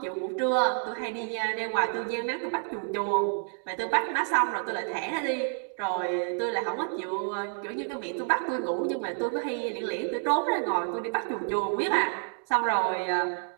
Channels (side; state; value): left; silent; 59 dB below the other